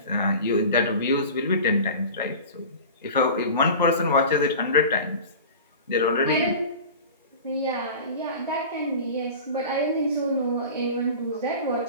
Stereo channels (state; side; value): inverted; both; correlation -0.35